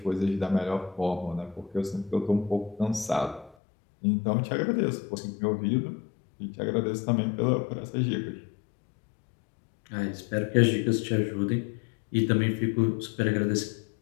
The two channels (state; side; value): drops out; right; at 3.6 s